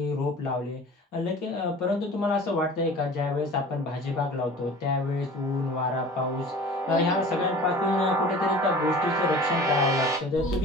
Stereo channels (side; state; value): both; normal; correlation 0.42